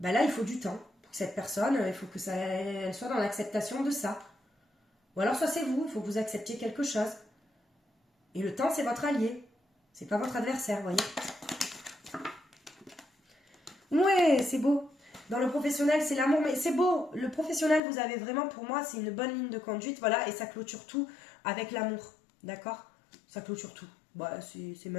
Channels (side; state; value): right; drops out; at 17.8 s